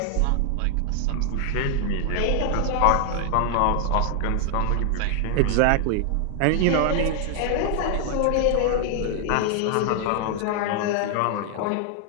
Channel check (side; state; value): both; different; correlation 0.00